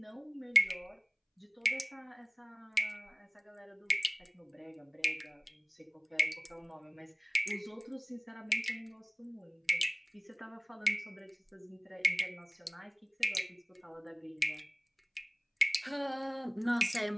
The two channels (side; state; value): both; identical; correlation 1.00